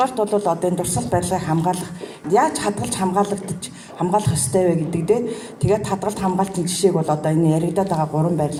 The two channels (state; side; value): identical; both; correlation 1.00